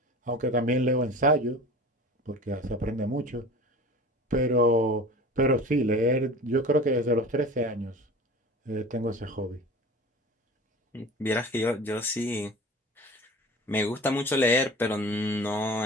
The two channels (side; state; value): both; normal; correlation 0.38